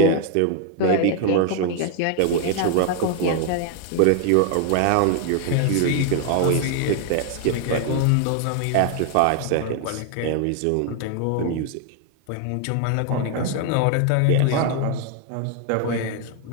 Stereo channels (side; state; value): both; different; correlation 0.00